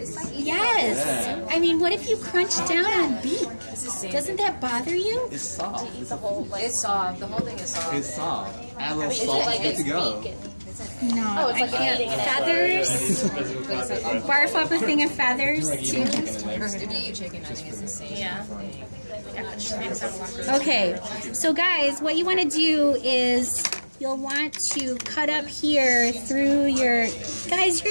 Yes. Yeah. I mean, what if you crunch down on beak? Doesn't that bother you? It's soft. The whole, like, it's soft. The whole thing is soft. It's soft. Add a little Is it salt, like good it's to go. bacon? No, Oh, it's I like can't. eating it. Feathers. Barf up a thing of feathers too. If you eat chicken, I think it's the same. Yeah. Okay, so guys, what you want to do is you'll want to cut up here through your... Guys,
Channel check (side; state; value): both; inverted; correlation -1.00